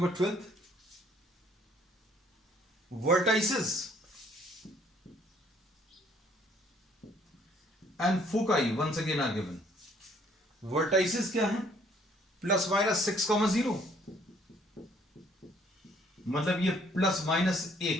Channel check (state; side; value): normal; both; correlation 0.62